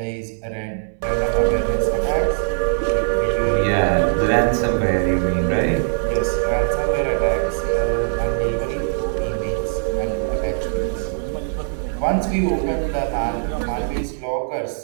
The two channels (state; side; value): silent; left; digital silence